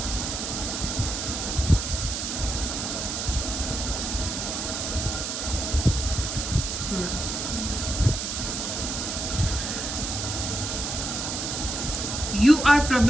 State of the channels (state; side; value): noise; right; hiss, 3 dB below the sound